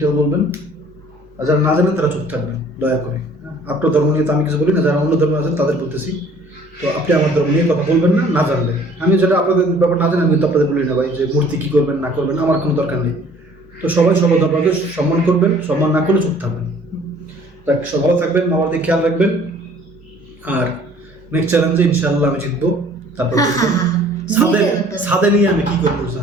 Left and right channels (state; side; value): normal; both; correlation 0.54